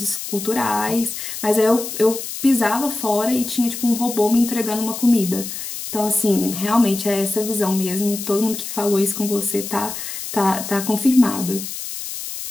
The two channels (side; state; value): left; noise; hiss, 8 dB below the sound